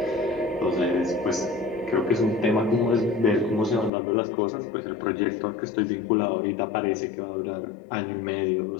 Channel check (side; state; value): right; drops out; at 3.9 s